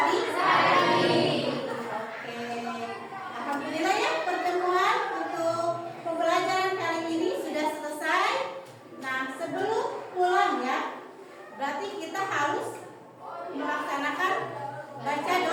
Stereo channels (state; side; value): identical; both; correlation 1.00